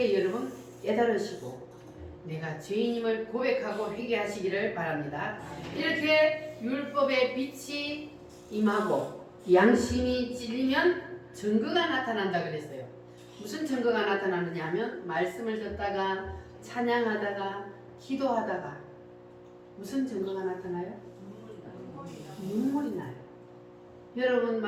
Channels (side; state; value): both; identical; correlation 1.00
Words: 여러분 깨달으시고 내가 죄인임을 고백하고 회개하시기를 바랍니다. 이렇게 율법의 빛이 임하고 양심이 찔리면 증거가 나타난다 그랬어요. 무슨 증거가 나타나느냐 하면 말씀을 듣다가 찬양하다가 기도하다가 무슨 증거가 나타나요? 눈물이 나요. 여러분